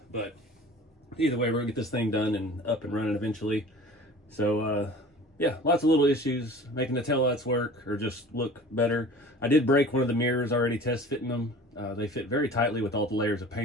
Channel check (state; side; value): normal; both; correlation 0.43